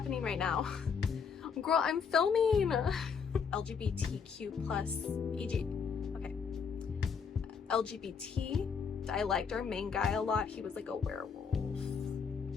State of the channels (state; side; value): quieter; right; 6.1 dB